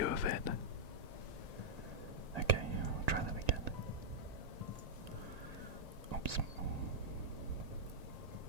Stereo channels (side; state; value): left; late; 1.9 ms